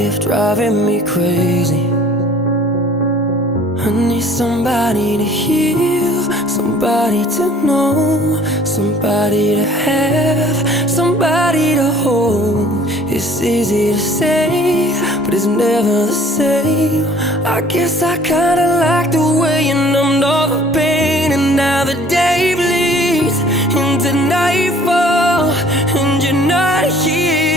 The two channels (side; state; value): both; normal; correlation 0.53